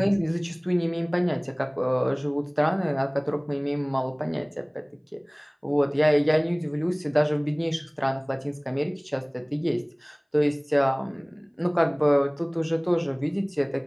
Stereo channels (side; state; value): both; identical; correlation 1.00